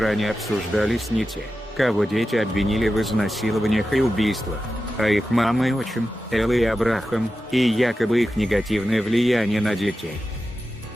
обсуждались не те, кого дети обвинили в изнасилованиях и убийствах, а их мама и отчим, Элла и Абрахам, и якобы их негативное влияние на детей.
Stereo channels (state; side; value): normal; both; correlation 0.92